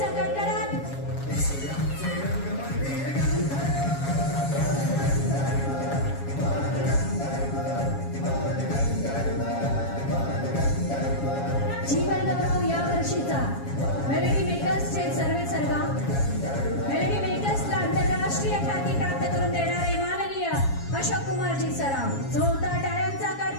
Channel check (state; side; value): late; right; 7.3 ms